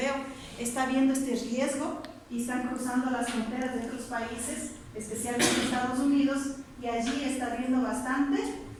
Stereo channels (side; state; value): both; identical; correlation 1.00